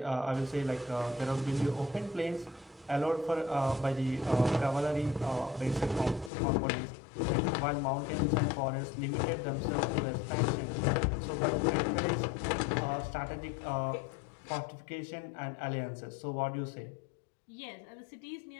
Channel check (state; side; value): drops out; right; at 6.3 s